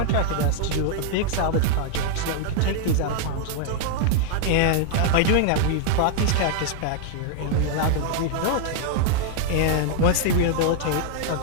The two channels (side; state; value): both; different; correlation 0.00